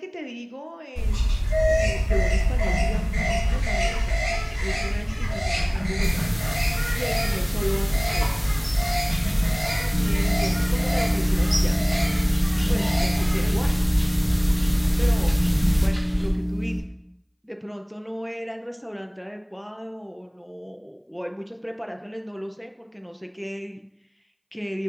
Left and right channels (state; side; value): identical; both; correlation 1.00